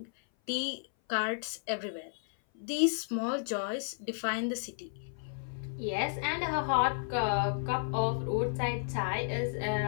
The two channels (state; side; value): silent; right; 56 dB below the other